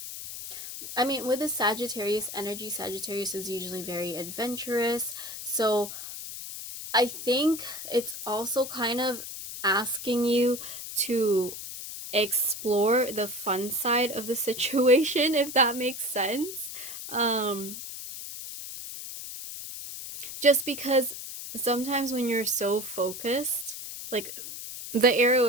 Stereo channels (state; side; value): noise; left; hiss, 9 dB below the sound